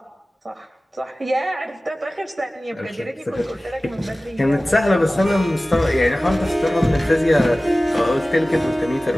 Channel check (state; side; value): normal; both; correlation 0.97